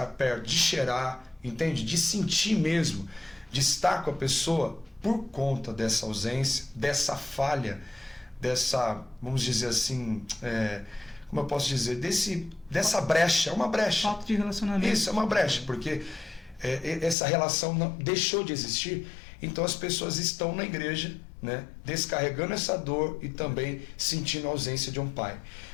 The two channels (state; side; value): drops out; right; at 17.2 s